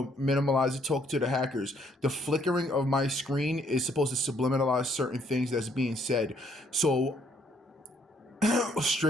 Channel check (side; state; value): both; normal; correlation 0.67